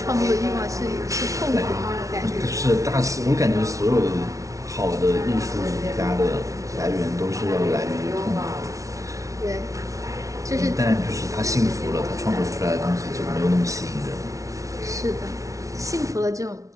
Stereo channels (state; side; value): late; left; 0.16 ms